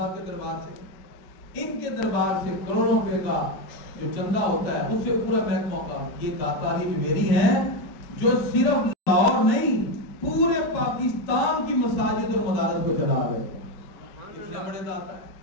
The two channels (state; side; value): late; right; 5.2 ms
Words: کے دربار سے. ان کے دربار سے کروڑوں روپے کا جو چندہ ہوتا ہے اس سے پورا محکمہ کا. یہ داتا علی جویری ہیں جو صرف لاہور نہیں پورے پاکستان کی مساجد اور مدارس کو چلا رہے ہیں. اتنے بڑے داتا ہے.